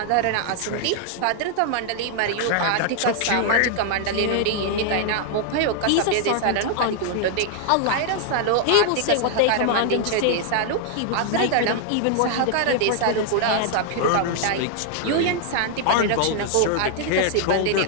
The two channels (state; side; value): different; both; correlation 0.00